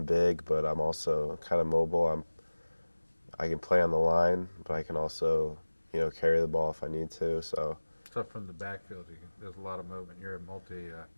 big, but I'm also kind of mobile. I can play on the line, but I can also, carry the ball if I need to. So From the backfield, there's a lot of movement. You're a multi.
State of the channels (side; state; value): both; inverted; correlation -1.00